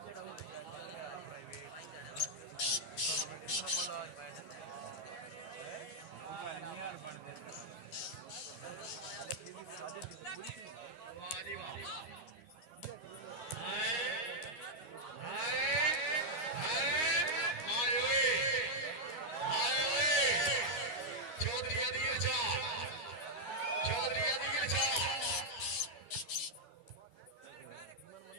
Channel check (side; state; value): right; late; 13 ms